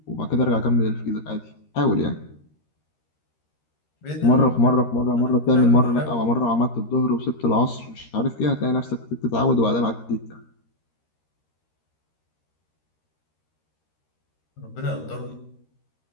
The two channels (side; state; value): right; late; 13 ms